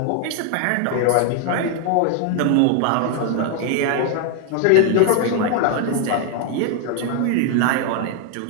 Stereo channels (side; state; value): both; different; correlation 0.00